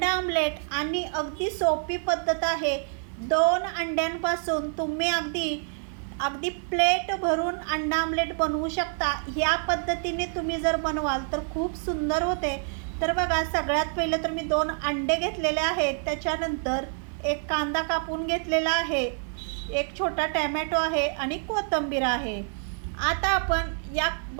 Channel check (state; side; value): silent; left; 55 dB below the other